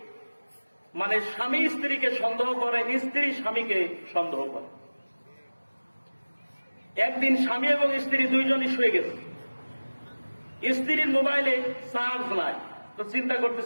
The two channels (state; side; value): inverted; both; correlation -1.00